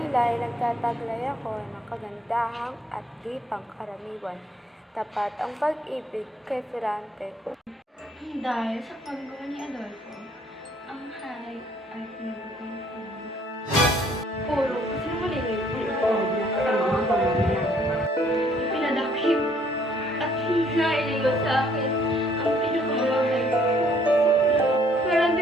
ay nagtataglay ako ng kagandahang at di pangkaraniwan. Tapat ang pag-ibig kay Ferrante. Dahil sa paggawa ni Adolfo, ang hari ay pinagutong-tong. Puro kasinungalingan ang loob niya sa mga pamamayan. Pinadakip at hinailigod sa akin ang pinakamamahal ko. Pero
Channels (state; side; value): normal; both; correlation 0.63